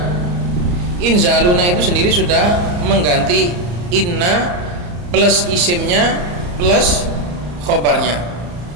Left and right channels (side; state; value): left; late; 34 ms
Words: itu sendiri sudah mengganti inna plus isimnya plus khobarnya.